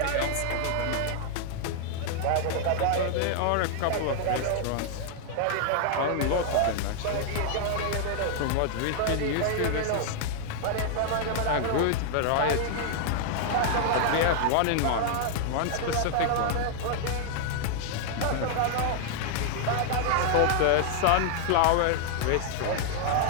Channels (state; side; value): different; both; correlation 0.00